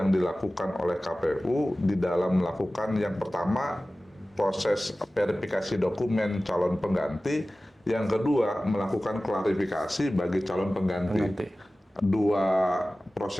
dilakukan oleh KPU di dalam melakukan yang pertama proses verifikasi dokumen calon pengganti. Yang kedua, melakukan klarifikasi bagi calon pengganti. Dua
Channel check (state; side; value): normal; both; correlation 0.96